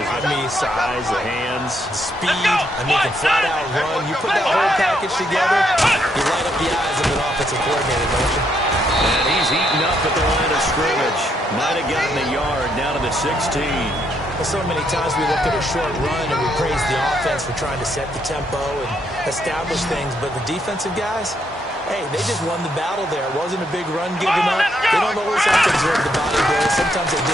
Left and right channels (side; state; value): both; normal; correlation 0.75